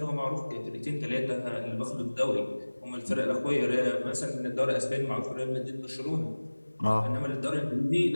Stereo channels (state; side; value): inverted; both; correlation -1.00